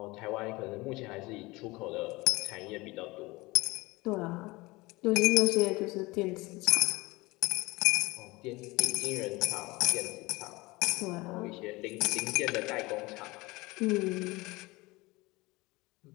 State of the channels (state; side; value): quieter; right; 22.2 dB